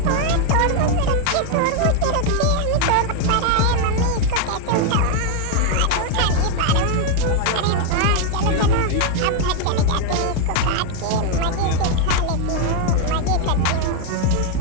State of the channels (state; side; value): different; both; correlation 0.00